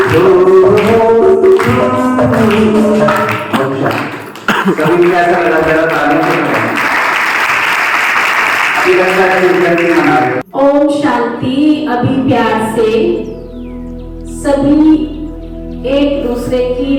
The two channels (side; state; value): both; identical; correlation 1.00